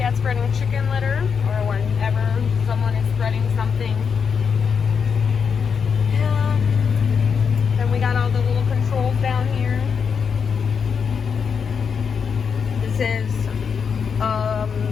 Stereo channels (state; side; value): quieter; right; 6.3 dB